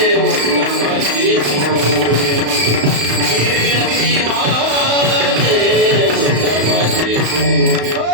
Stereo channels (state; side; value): late; left; 35 ms